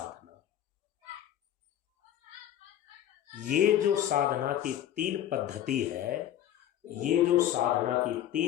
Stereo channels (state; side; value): quieter; right; 11.4 dB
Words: ये जो साधना की 3 पद्धति है, ये जो साधना की